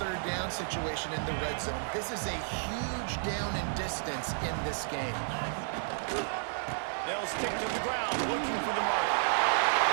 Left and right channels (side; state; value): left; silent; digital silence